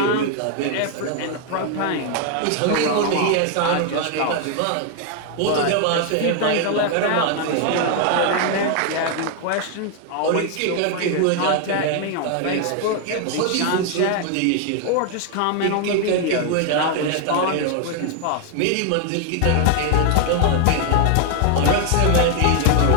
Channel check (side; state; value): both; different; correlation 0.00